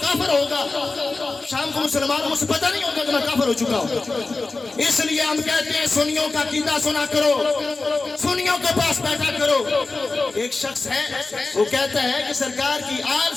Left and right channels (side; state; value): right; quieter; 3.6 dB